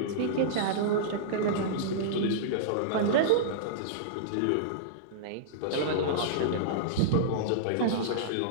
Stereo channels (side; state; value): both; different; correlation -0.03